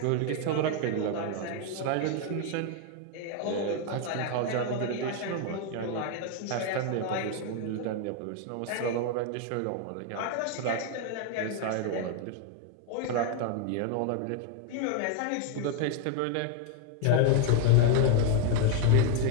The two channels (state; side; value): different; both; correlation 0.01